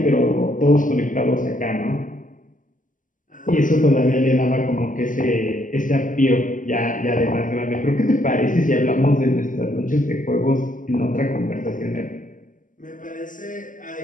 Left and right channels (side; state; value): right; late; 0.38 ms